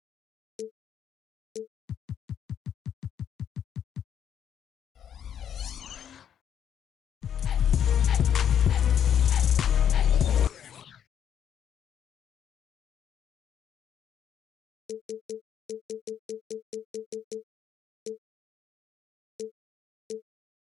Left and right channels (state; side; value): quieter; right; 9.0 dB